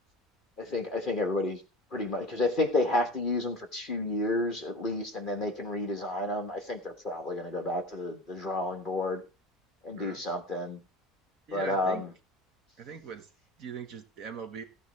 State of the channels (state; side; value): normal; both; correlation 0.34